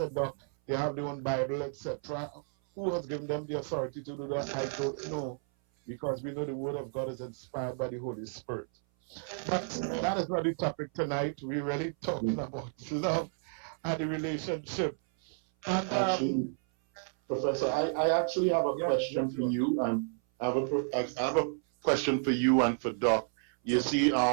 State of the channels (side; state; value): left; silent; 57 dB below the other